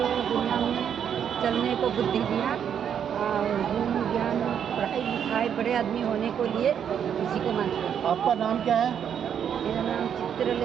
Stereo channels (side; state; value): left; quieter; 8.4 dB